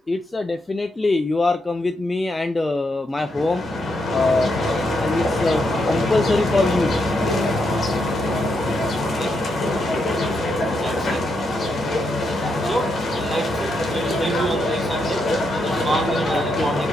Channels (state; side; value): normal; both; correlation 0.81